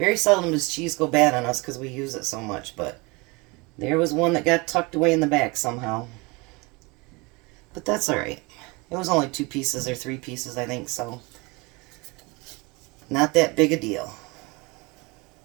seldom does cheese go bad on us because we use it so much, but there was one that got tucked away in the back somehow. But that's alright. It was only 2 pieces or 3 pieces, I think, so not that big a deal.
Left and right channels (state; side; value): quieter; left; 26.4 dB